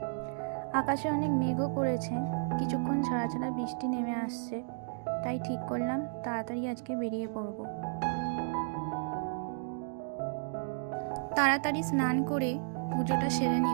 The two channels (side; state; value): left; silent; digital silence